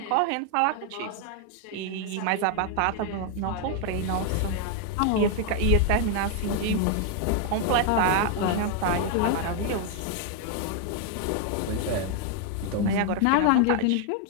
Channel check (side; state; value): both; different; correlation 0.00